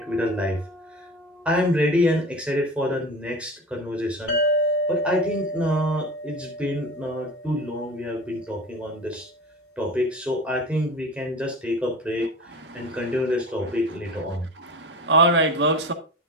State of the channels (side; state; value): both; normal; correlation 0.33